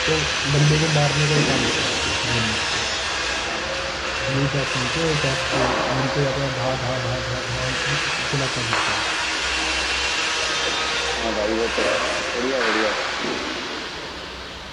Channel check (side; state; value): both; identical; correlation 1.00